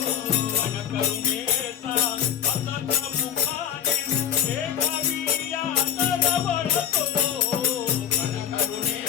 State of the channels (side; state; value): right; quieter; 9.5 dB